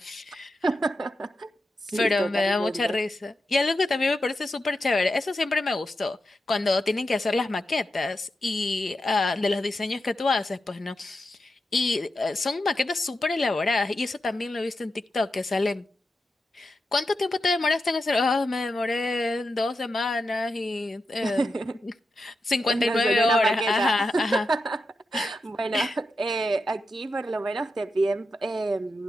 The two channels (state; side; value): normal; both; correlation 0.88